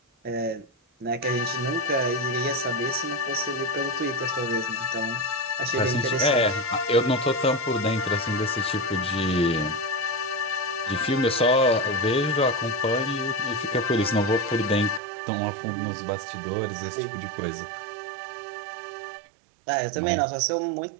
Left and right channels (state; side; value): drops out; left; at 15.0 s